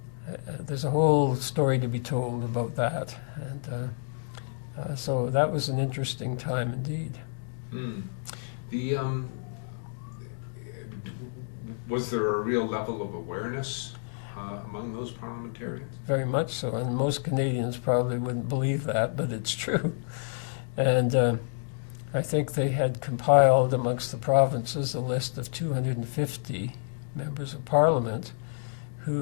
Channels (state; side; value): silent; right; digital silence